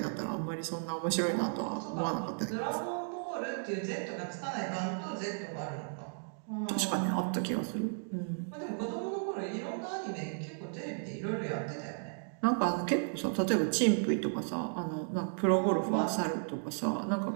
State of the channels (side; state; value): left; silent; digital silence